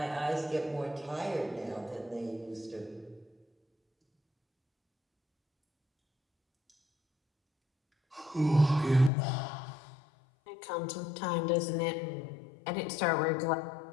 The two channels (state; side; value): drops out; right; at 9.1 s